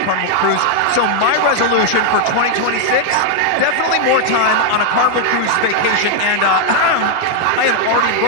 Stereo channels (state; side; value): different; both; correlation 0.00